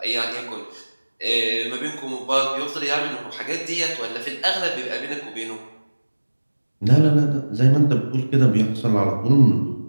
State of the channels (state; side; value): inverted; both; correlation -1.00